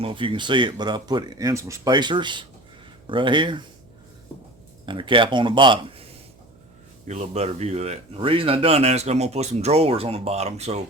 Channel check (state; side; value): noise; right; hum, 29 dB below the sound